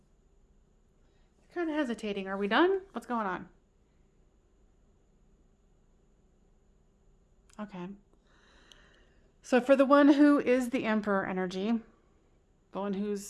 Kind of hesitating. Are we done? What's going on? Okay. So for the one who is the Emperor energy, the one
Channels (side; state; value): both; identical; correlation 1.00